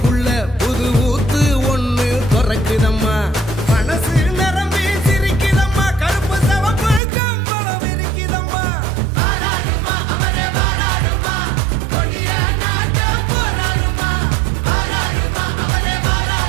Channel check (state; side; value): drops out; left; at 7.0 s